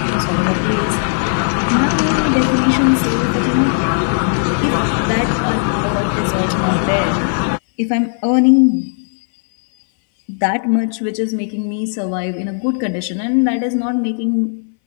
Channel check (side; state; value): right; silent; 63 dB below the other